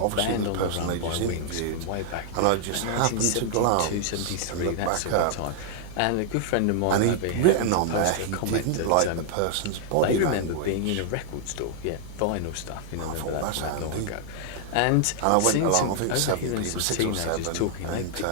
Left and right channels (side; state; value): both; different; correlation -0.01